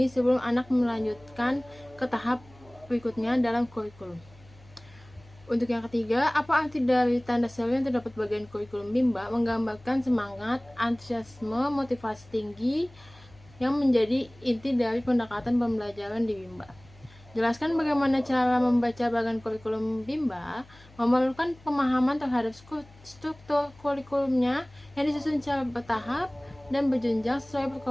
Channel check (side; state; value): left; noise; hum, 24 dB below the sound